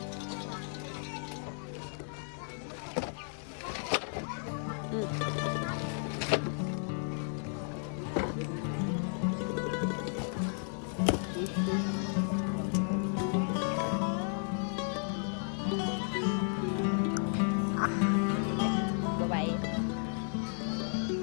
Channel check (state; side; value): silent; right; 55 dB below the other